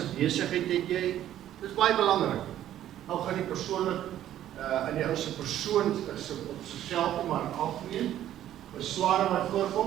besigheid het jy? Dis baie belangrik. Nou gaan die persoonlik in die ou se persoon is op sigself maar algemeen. Besware wat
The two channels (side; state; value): left; quieter; 12.0 dB